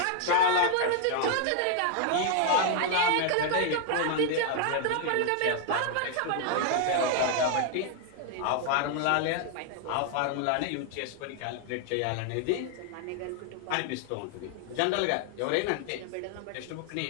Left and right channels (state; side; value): different; both; correlation 0.00